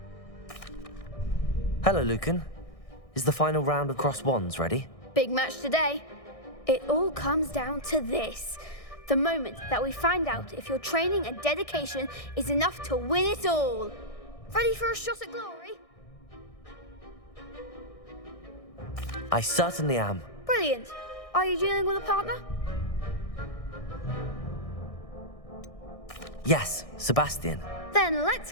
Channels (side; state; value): right; late; 1.6 ms